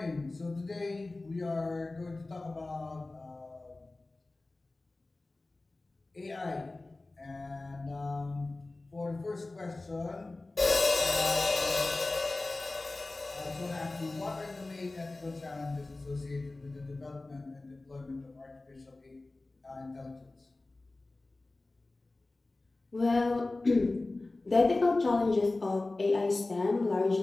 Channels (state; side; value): quieter; right; 3.1 dB